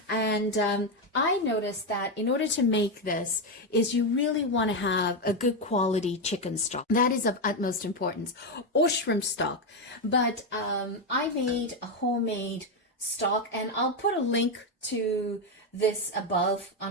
And I noticed that in order to make this is you really want to have a good quality chicken stock. That is of utmost importance, or shrimp stock. But I made a homemade stock, and I'll put a link to this above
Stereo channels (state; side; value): normal; both; correlation 0.08